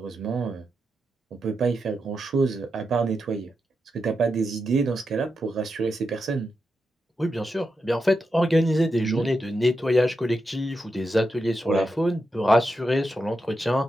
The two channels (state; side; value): normal; both; correlation 0.87